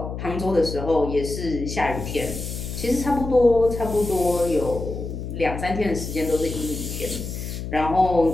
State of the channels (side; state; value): left; noise; hum, 7 dB below the sound